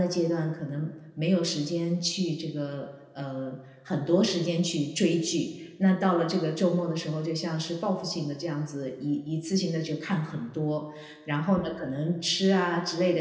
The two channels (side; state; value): both; identical; correlation 1.00